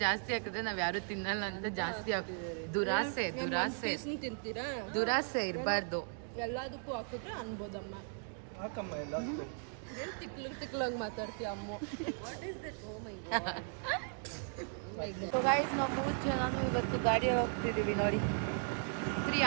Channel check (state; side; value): silent; left; 53 dB below the other